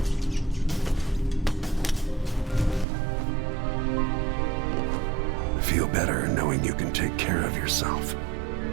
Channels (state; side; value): drops out; left; at 2.9 s